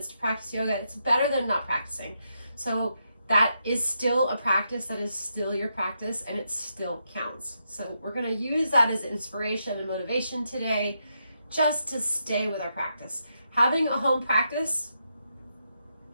to practice yoga, it's better than not practicing. So that is still a practice, that is still your practice, and it still counts. So we're going to use that as inspiration and motivation today, just to stay with our practice. Having a home practice,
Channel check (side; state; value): both; inverted; correlation -0.82